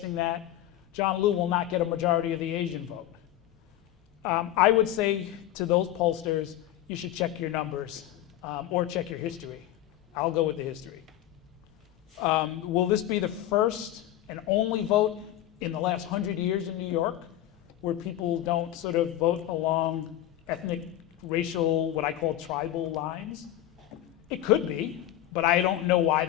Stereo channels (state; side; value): quieter; right; 13.1 dB